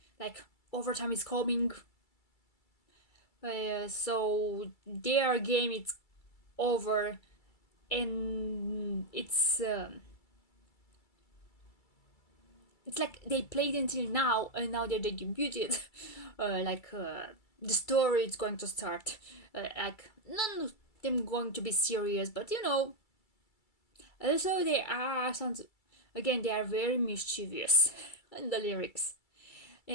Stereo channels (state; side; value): late; right; 2.3 ms